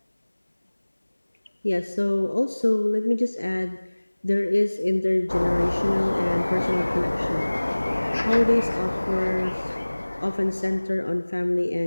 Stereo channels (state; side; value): inverted; both; correlation -1.00